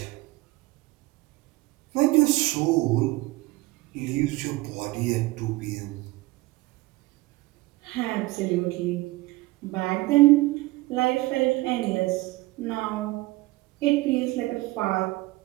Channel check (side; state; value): left; quieter; 20.6 dB